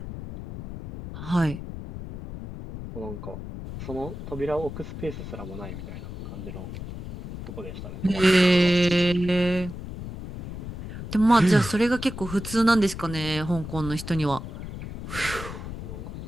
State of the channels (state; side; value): noise; left; rumble, 9 dB below the sound